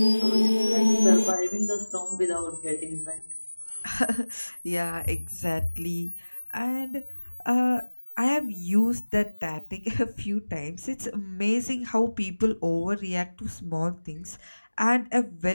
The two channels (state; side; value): inverted; both; correlation -1.00